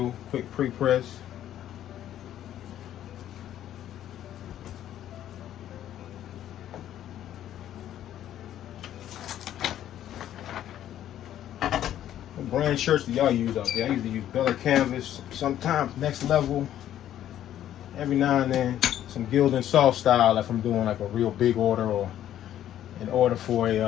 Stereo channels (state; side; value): quieter; right; 11.6 dB